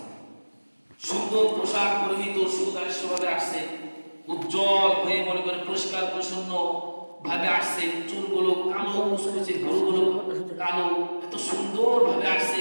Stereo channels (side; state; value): both; inverted; correlation -1.00